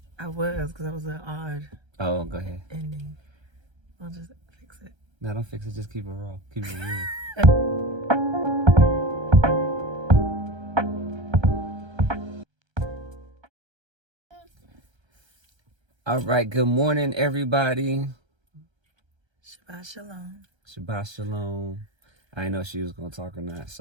I was, because that was an odd Oh, go ahead. ending. I'll just fix it. No, don't fix it. Just keep it raw. Keep it real. All right. Good morning, everybody. Shabbat shalom. Shabbat shalom. I didn't know if she was going to talk or not,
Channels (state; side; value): late; left; 1.3 ms